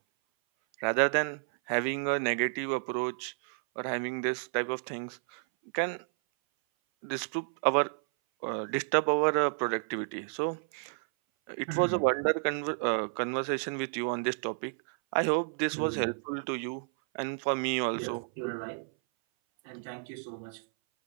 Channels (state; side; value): silent; left; 57 dB below the other